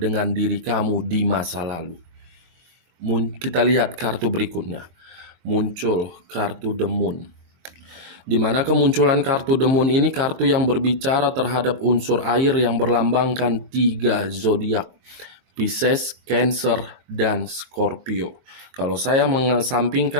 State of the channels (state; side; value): late; left; 23 ms